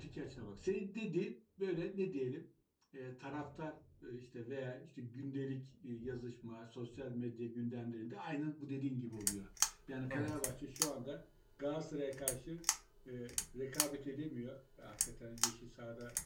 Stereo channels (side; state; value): both; identical; correlation 1.00